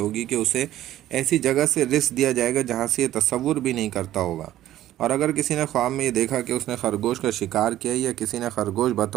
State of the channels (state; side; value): quieter; left; 13.4 dB